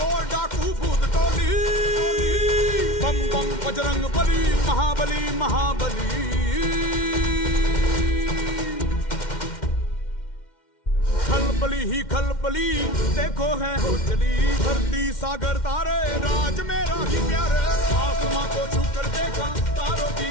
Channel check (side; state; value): right; late; 2.1 ms